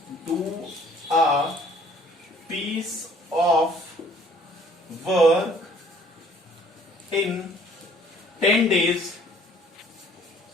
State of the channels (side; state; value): both; normal; correlation 0.57